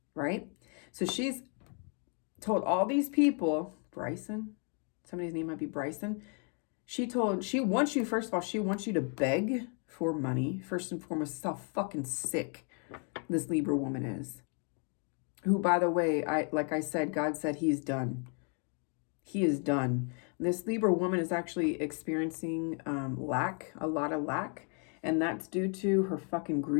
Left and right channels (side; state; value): right; quieter; 39.5 dB